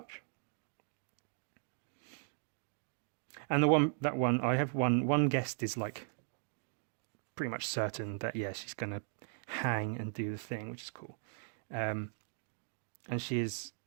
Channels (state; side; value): silent; left; 53 dB below the other